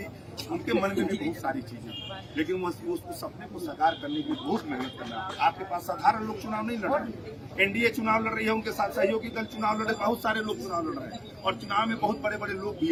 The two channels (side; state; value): both; identical; correlation 1.00